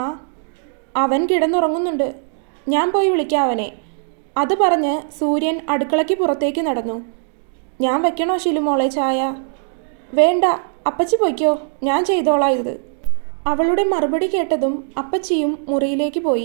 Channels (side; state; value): left; silent; digital silence